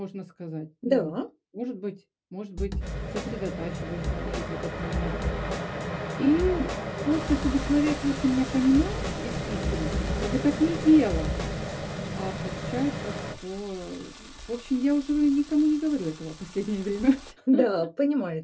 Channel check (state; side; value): identical; both; correlation 1.00